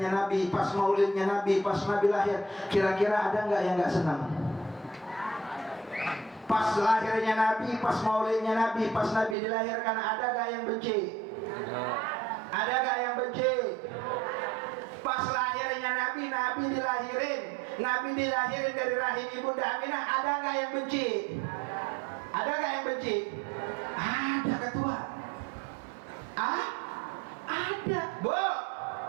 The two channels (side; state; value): left; drops out; at 9.3 s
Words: Nabi, pas maulidnya Nabi, pas Nabi lahir, kira-kira ada nggak yang nggak senang? Pas lahirnya Nabi, pas maulidnya Nabi, pas Nabi dilahirkan, ada nggak yang benci? Ada nggak yang benci? Pas lahirnya Nabi, Nabi dilahirin dari rahim Ibunda Aminah, ada nggak yang benci? Ada nggak yang benci? Ada ketua. Ada, Bu.